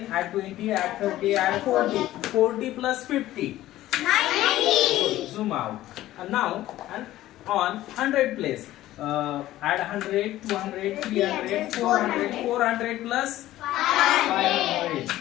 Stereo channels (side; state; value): right; quieter; 14.9 dB